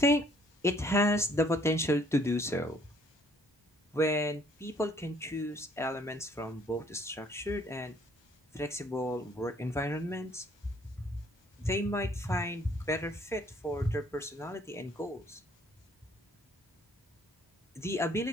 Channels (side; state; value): both; normal; correlation 0.62